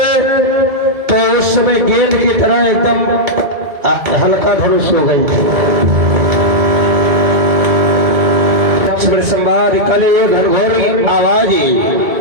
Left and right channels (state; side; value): late; left; 2.2 ms